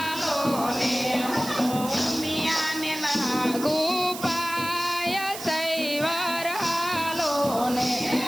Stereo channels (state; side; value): noise; right; hiss, 10 dB below the sound